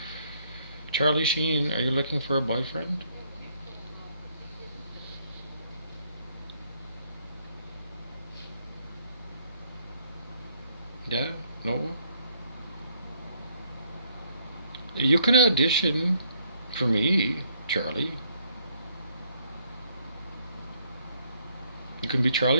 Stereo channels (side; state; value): both; inverted; correlation -0.68